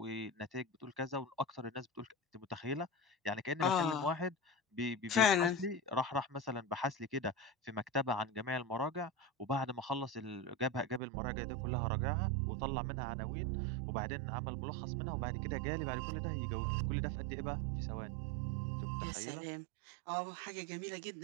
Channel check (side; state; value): left; drops out; at 11.0 s